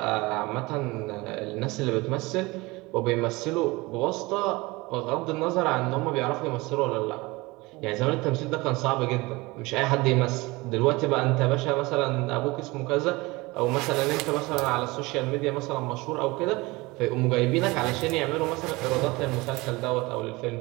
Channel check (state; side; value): quieter; left; 22.8 dB